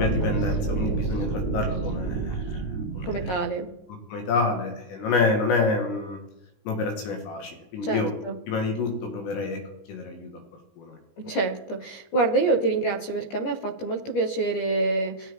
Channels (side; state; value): right; late; 17 ms